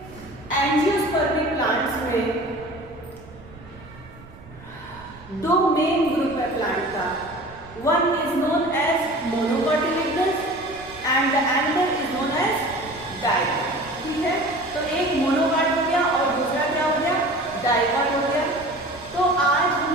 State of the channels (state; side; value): noise; right; rumble, 20 dB below the sound